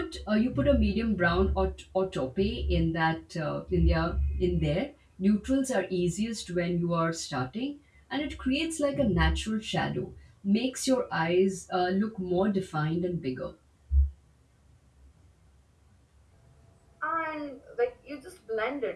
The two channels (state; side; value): identical; both; correlation 1.00